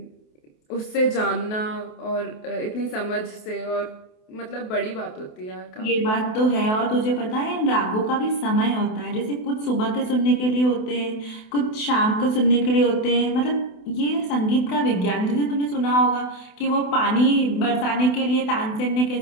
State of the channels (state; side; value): late; right; 28 ms